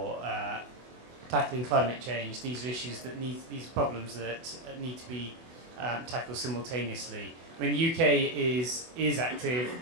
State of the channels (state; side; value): late; left; 24 ms